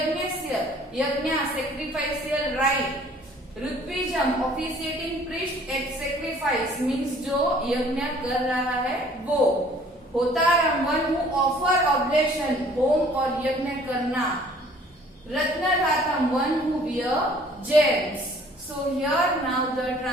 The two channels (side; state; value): both; normal; correlation 0.55